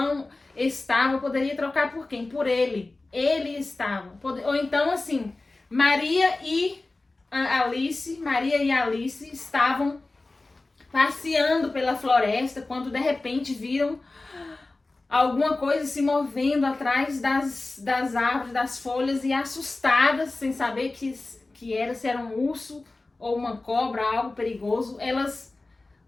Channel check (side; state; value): right; quieter; 3.2 dB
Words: estava, poderia trocar por quem? Por ele. Ele estava. Ou então assim, Maria e Alice estavam passeando pela floresta quando de repente viram alguma coisa se movendo atrás das árvores, das folhas, e assustadas, sem saber que que era, se era um urso ou uma cobra, algo perigoso. Elas